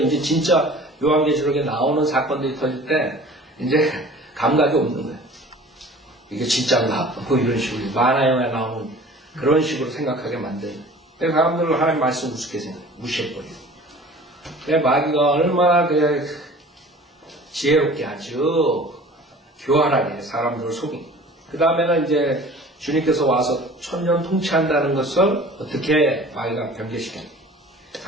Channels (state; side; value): normal; both; correlation 0.45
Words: 이제 진짜 요한계시록에 나오는 사건들이 터질 때 이제 감각이 없는 거예요. 이게 진짜인가? 뭐 이런 식으로 만화 영화에 나오는 그런 식으로 생각하게 만드는. 그래서 사람들은 하나님 말씀 우습게 무시해버려요. 마귀가 얼마나 지혜롭게 아주 교활하게 사람들을 속인. 그 다음에는 이제 주님께서 와서 천년 통치한다는 것을 어떻게 마귀가 변개시켰냐.